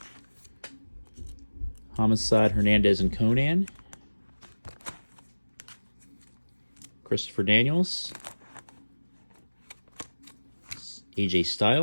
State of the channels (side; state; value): both; inverted; correlation -1.00